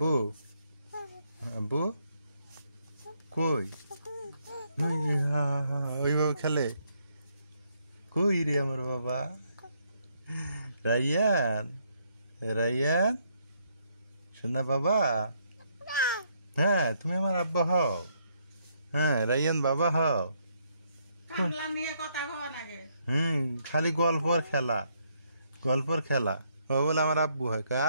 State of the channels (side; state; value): both; inverted; correlation -0.73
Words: আব্বু কই? ওই ওইভাবে খেলে। কই রে আমার বাবা? রাইয়ান রাইয়ান শোনা বাবা। হ্যাঁ তুমি আমার আব্বা হও। হ্যাঁ রাইয়ান বাবা হও। কামলা নিয়ে কথা হওয়া নাগে। খালি গল্পর খেলা গল্পর খেলা। ও বলে আমার আব্বু হয় কা।